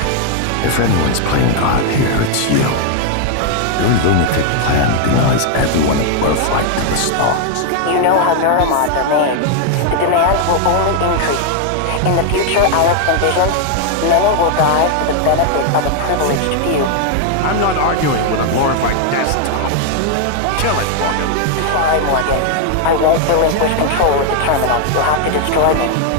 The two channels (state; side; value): different; both; correlation 0.00